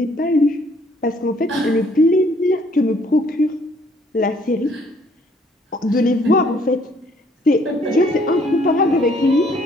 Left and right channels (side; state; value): both; normal; correlation 0.63